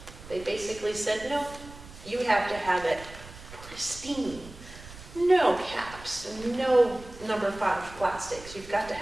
They basically said, no, you have to have it pristine. No caps, no number 5 plastics. You've got to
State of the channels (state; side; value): noise; right; rumble, 17 dB below the sound